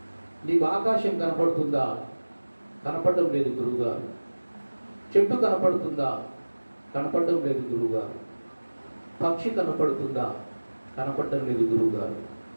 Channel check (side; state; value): both; inverted; correlation -1.00